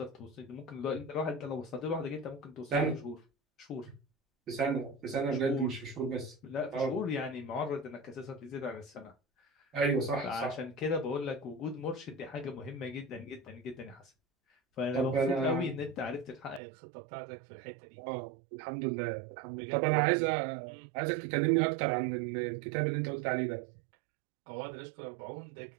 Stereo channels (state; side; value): drops out; left; at 16.6 s